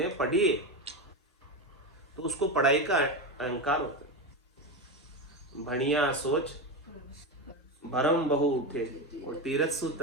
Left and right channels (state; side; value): normal; both; correlation 0.16